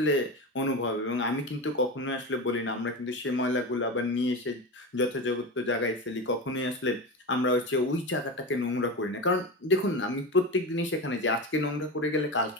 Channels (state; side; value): normal; both; correlation 0.23